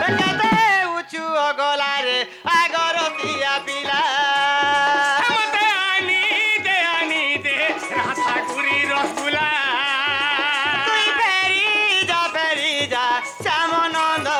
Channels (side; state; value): both; identical; correlation 1.00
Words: কেতে উঁচু গলারে আগরতিয়া পিলা মতে আনি দে রাধা গুরি রসগুলা তুই ফেরি যা